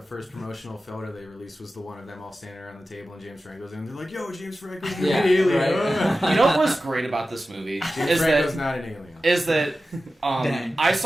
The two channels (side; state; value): both; normal; correlation 0.94